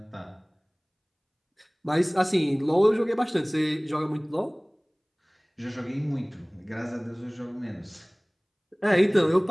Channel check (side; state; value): both; identical; correlation 1.00